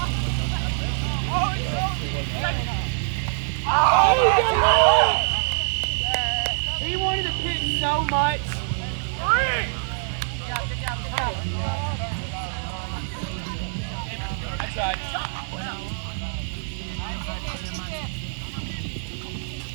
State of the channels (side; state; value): left; silent; digital silence